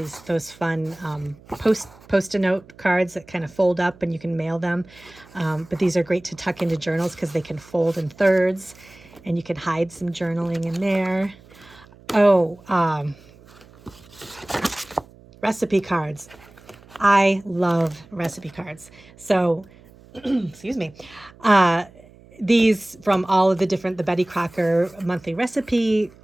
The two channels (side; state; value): right; noise; hum, 24 dB below the sound